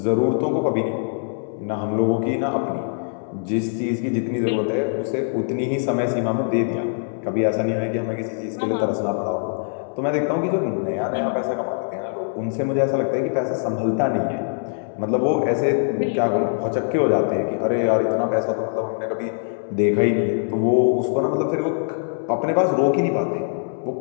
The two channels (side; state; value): right; silent; 64 dB below the other